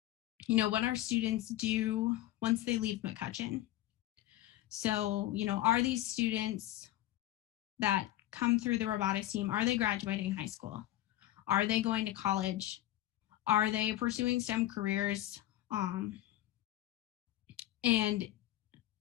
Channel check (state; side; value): quieter; right; 14.6 dB